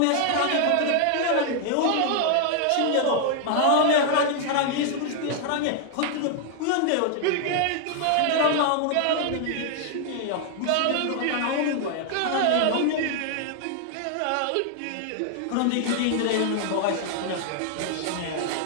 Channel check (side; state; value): both; different; correlation 0.00